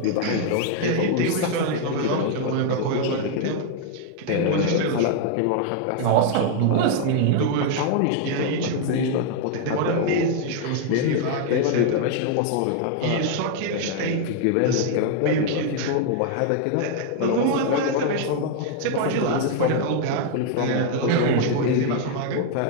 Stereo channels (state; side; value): different; both; correlation 0.00